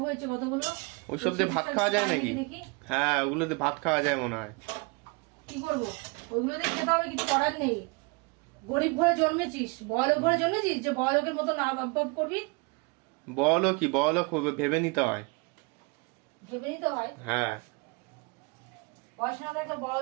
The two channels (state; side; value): quieter; left; 29.9 dB